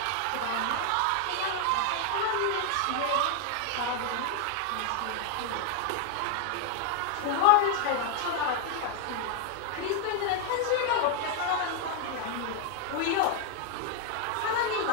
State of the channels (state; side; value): different; both; correlation 0.00